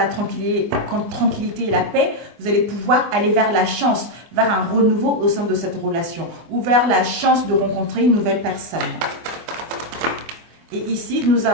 tranquillité et la paix, vous allez pouvoir aller vers la chance, vers un renouveau au sein de cette relation, ou vers la chance de rencontrer une nouvelle personne. Et ici, nous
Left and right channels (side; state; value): left; late; 24 ms